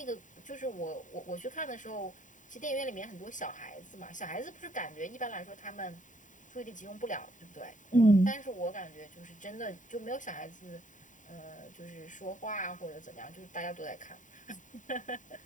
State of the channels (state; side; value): late; right; 0.37 ms